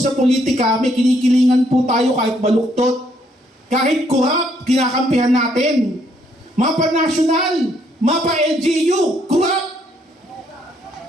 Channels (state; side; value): normal; both; correlation 0.70